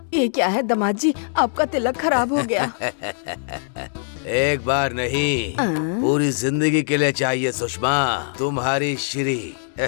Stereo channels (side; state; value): right; silent; digital silence